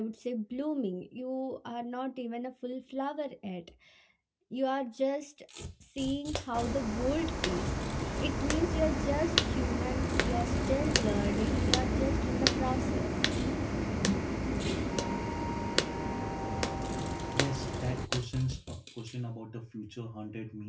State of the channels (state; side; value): identical; both; correlation 1.00